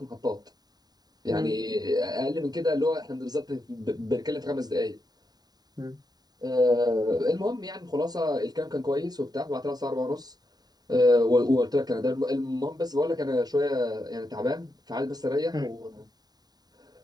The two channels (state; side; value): late; left; 0.19 ms